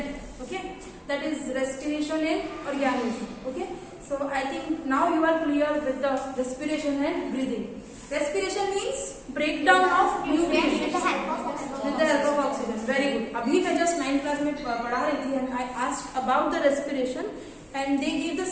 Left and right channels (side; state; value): both; identical; correlation 1.00